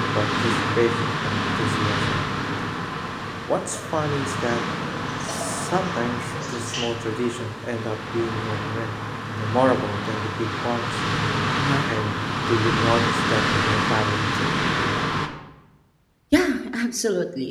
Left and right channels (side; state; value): both; identical; correlation 1.00